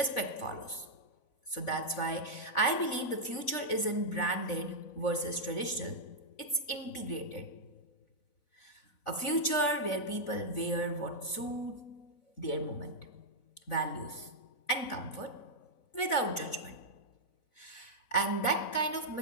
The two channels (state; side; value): late; right; 4.0 ms